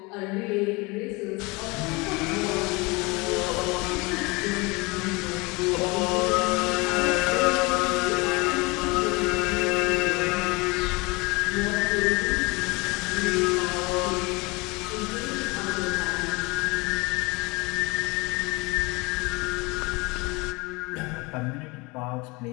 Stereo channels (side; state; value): right; quieter; 26.0 dB